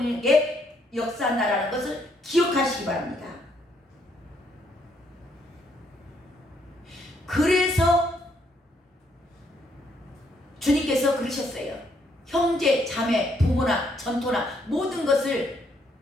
역사한다라는 것을 기억하시기 바랍니다. 그래서 주님께서 그러셨어요. 형제, 자매, 부모나 전토나 모든 것을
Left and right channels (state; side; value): normal; both; correlation 0.72